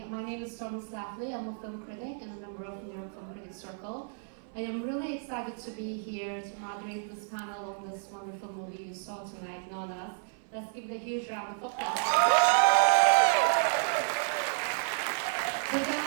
My name is Stormy Slafley. I'm a film critic and a member of the New York Film Critics Circle. I am really excited to be here to moderate this panel on this wonderful movie you saw tonight, Nonnas. Let's give it a huge round of applause.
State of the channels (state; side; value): silent; left; 57 dB below the other